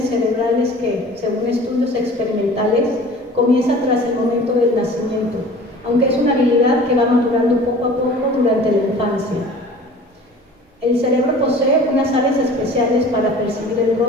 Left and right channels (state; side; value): normal; both; correlation 0.44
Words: cerebrales que, según estudios experimentales, comienza tras el momento del nacimiento, aunque es una habilidad que va madurando poco a poco durante la infancia. El cerebro posee unas áreas especiales para percibir el